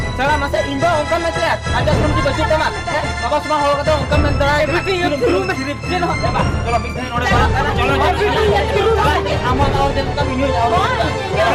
सारा मसे इंदा उनका में से राजा सुरम की बच्चे तमा बाबा सुमा हो कथा उनका में दरा चलो बाबा चलो मिठे नोडे बड़ा चलो अमन और जन का वीडियो जाओ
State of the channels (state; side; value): identical; both; correlation 1.00